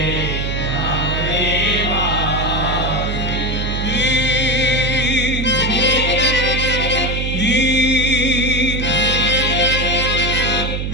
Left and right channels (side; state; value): right; noise; hum, 2 dB below the sound